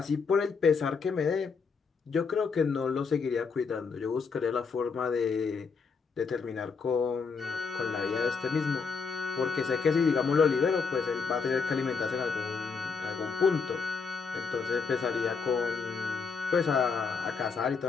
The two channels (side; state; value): right; quieter; 5.2 dB